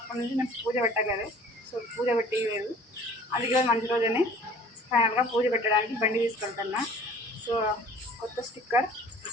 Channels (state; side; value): normal; both; correlation 0.49